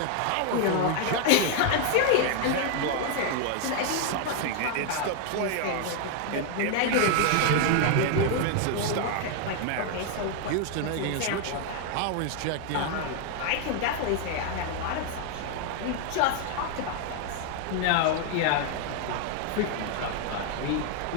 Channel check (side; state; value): both; different; correlation 0.00